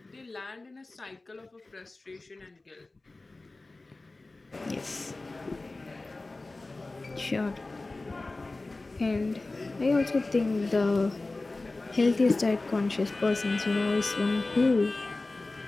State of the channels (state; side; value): quieter; right; 3.2 dB